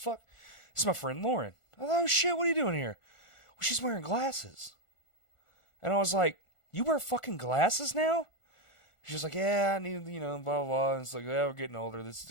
It's my friend Lauren. Oh, shit, what are you doing here? Well, she's wearing glasses. And I was like, you wear fucking glasses now? She's like, yeah, I need, blah, blah, blah. And it's like, yeah, we're getting older. This is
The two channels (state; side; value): late; right; 1.4 ms